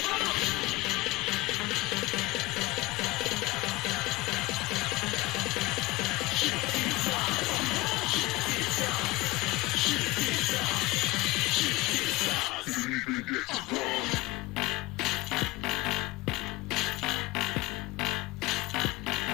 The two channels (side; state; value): right; quieter; 20.4 dB